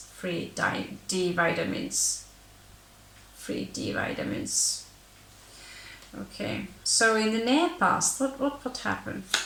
free D vitamins. Free D vitamins. Okay, so in the near past, what happened?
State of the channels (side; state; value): both; identical; correlation 1.00